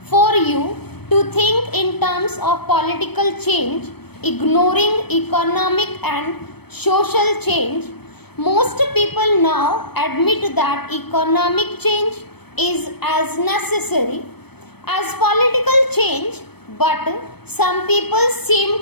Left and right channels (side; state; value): right; late; 0.97 ms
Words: for you to think in terms of political change ignoring economic and social change. Most people now admit that economic change is as necessary as political change, but some people